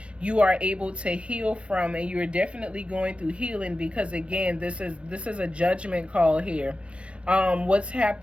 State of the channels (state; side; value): late; left; 0.060 ms